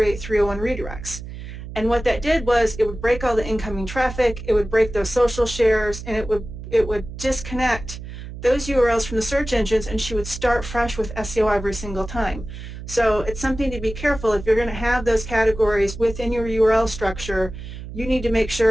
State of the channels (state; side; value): noise; right; hum, 11 dB below the sound